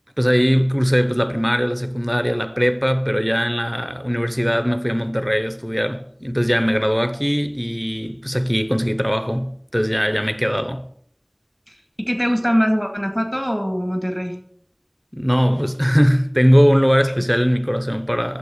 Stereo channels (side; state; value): both; identical; correlation 1.00